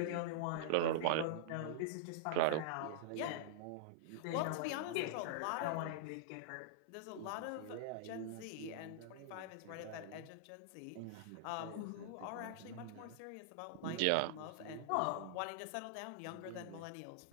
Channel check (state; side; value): different; both; correlation -0.02